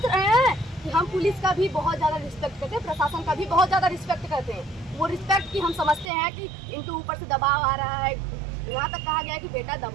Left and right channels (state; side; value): drops out; left; at 6.1 s